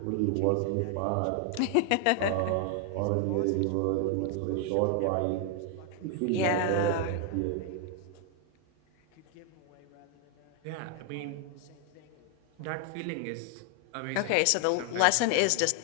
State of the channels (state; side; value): different; both; correlation 0.00